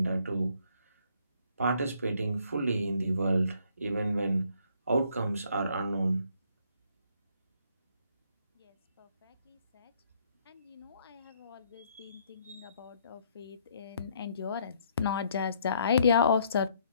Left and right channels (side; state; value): both; inverted; correlation -0.67